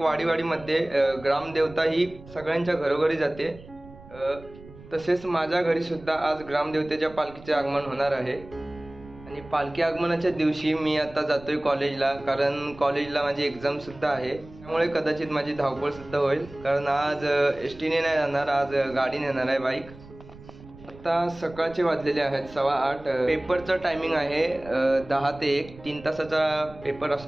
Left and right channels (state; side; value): noise; right; rumble, 19 dB below the sound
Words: वाडीवाडीमध्ये ग्रामदेवता ही सगळ्यांच्या घरोघरी जाते. तसेच माझ्या घरी सुद्धा आज ग्रामदेवतेच्या पालखीचे आगमन होणार आहे आणि पालखी आगमनाच्या दिवशी मी आता जातोय कॉलेजला, कारण कॉलेजला माझी एक्झाम सुद्धा आहे. त्यामुळे कदाचित माझी धावपळ सुद्धा होईल, कारण आज एसटीने नाही जाणार, आज गाडीने येणार आहे, बाईक. आता सकाळचे वाजलेले आहेत 8:15. पेपरचं टायमिंग आहे 10 ते 1, 3 तासाचा पेपर